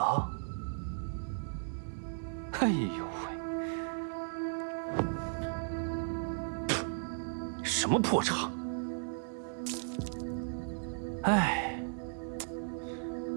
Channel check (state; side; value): silent; left; digital silence